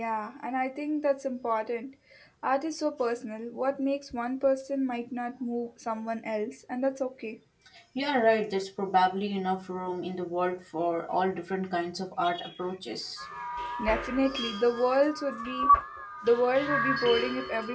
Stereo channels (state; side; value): identical; both; correlation 1.00